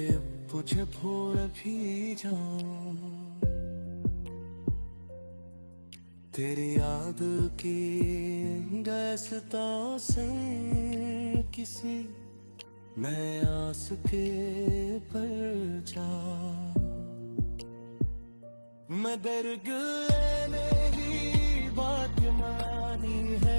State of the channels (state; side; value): inverted; both; correlation -1.00